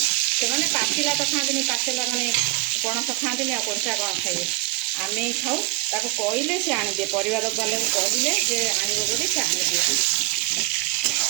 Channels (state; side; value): quieter; left; 22.3 dB